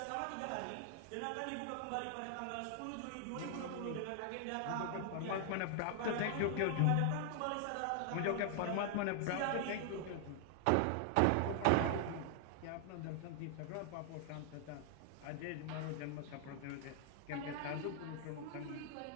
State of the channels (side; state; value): both; different; correlation 0.00